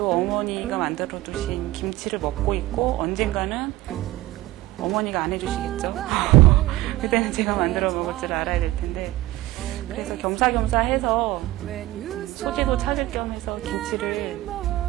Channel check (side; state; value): left; quieter; 17.4 dB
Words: 어머니가 만들어 두신 김치를 먹고 있고 언젠가는 어머니가 안 해주시겠죠. 그때는 제가 만들어 먹을 줄 알아야 될 텐데 그래서 겸사겸사 해서 소재도 찾을 겸 해서 김치를